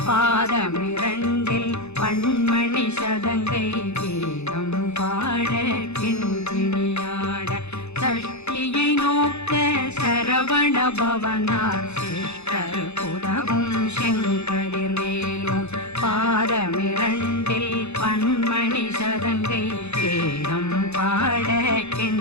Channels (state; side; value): late; right; 0.81 ms